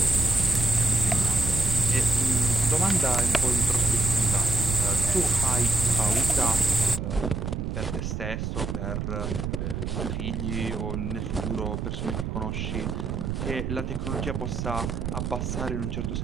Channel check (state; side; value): noise; right; rumble, 3 dB below the sound